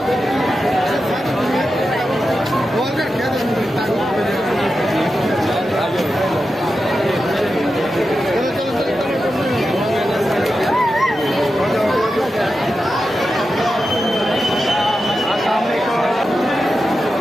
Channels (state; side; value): normal; both; correlation 0.90